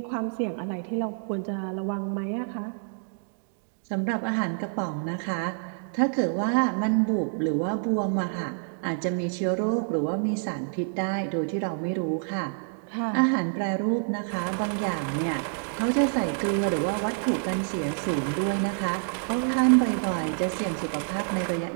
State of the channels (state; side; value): silent; left; digital silence